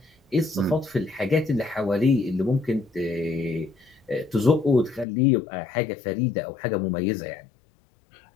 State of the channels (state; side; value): drops out; right; at 5.1 s